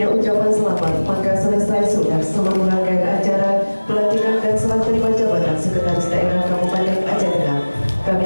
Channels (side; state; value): both; inverted; correlation -1.00